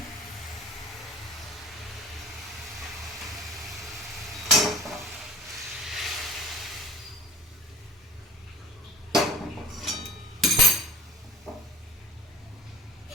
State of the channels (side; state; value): both; normal; correlation 0.43